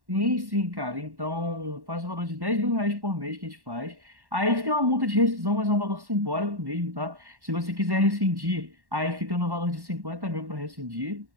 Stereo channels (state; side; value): late; left; 1.1 ms